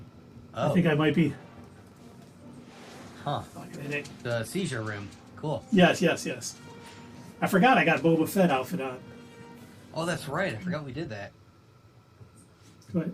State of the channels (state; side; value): identical; both; correlation 1.00